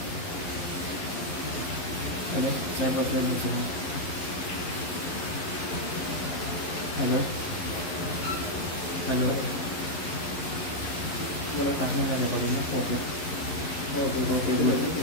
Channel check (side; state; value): right; late; 11 ms